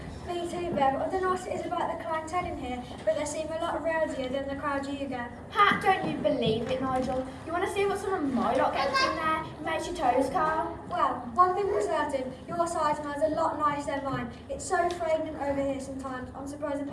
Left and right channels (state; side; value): identical; both; correlation 1.00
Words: Me too, Bev. I don't know what it is about the clientele in here, but they seem a lot rowdier than the crowd you get. Ha, don't you believe it, Nigel? You want to see what some of my lot gets in there? It makes your toes curl. Well, one thing for certain, your side smells a lot nicer than mine. It's so fragrant over here sometimes. I'm surprised the